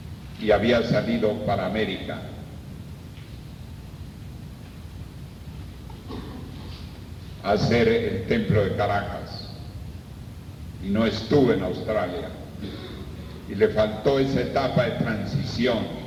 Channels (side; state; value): both; identical; correlation 1.00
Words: y había salido para América. A hacer el templo de Caracas y no estuve en Australia, y le faltó esa etapa de transición